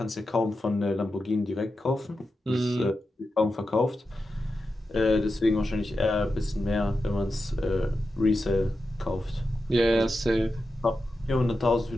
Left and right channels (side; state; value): both; normal; correlation 0.90